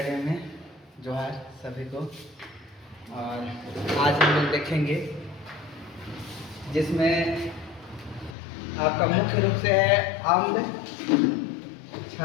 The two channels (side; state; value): right; drops out; at 8.3 s